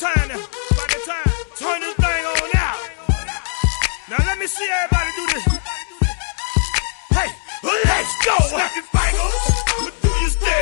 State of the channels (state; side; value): silent; right; digital silence